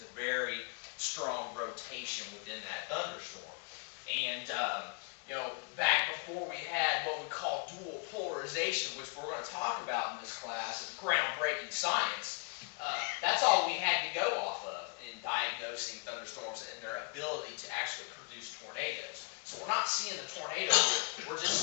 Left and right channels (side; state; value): right; quieter; 35.4 dB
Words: a very strong rotation within that thunderstorm. And you know, back before we had what we call dual polarization, which we're going to talk about in this class, is groundbreaking science. That's all we had to go off of in diagnosing thunderstorms and their ability to actually produce tornadoes. So we're not seeing the tornado here, we're just